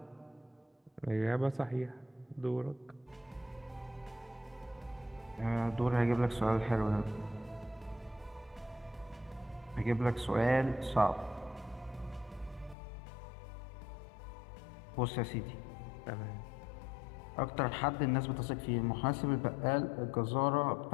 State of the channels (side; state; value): right; drops out; at 12.8 s